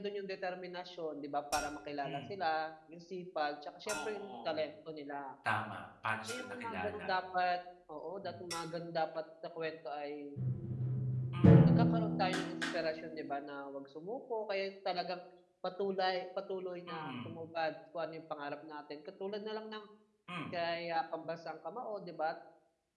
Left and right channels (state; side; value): identical; both; correlation 1.00